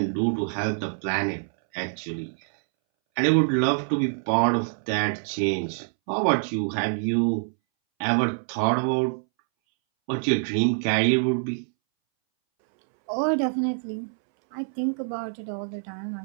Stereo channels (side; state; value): left; silent; 61 dB below the other